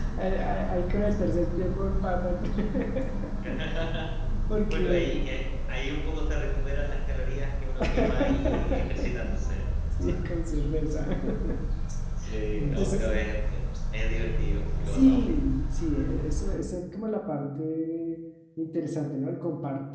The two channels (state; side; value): identical; both; correlation 1.00